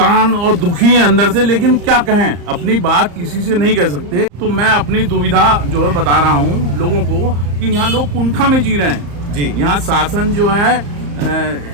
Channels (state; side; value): late; left; 34 ms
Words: और दुखी हैं अंदर से। लेकिन क्या कहें, अपनी बात किसी से नहीं कह सकते। तो मैं अपनी दुविधा जो है बता रहा हूँ लोगों को कि यहाँ लोग कुंठा में जी रहे हैं जी। यहाँ शासन जो है